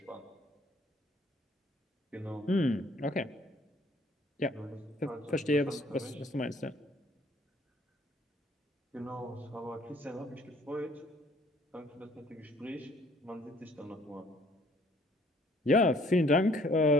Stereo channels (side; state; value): both; normal; correlation 0.59